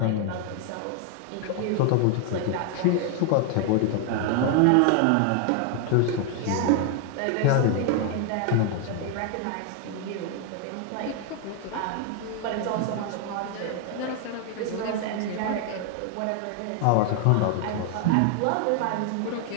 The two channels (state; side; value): different; both; correlation 0.00